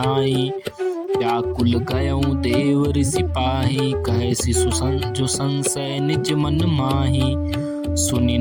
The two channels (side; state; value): both; identical; correlation 1.00